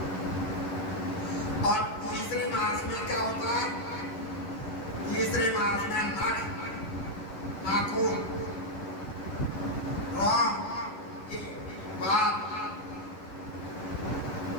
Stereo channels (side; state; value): right; late; 11 ms